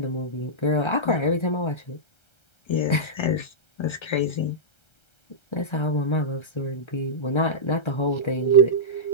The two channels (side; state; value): right; late; 1.3 ms